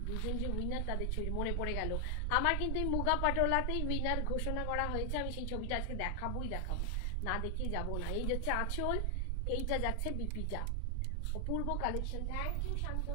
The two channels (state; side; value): different; both; correlation 0.00